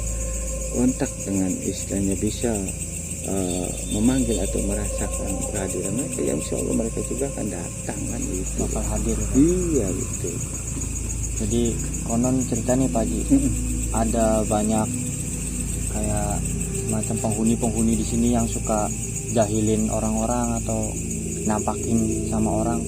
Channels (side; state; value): both; identical; correlation 1.00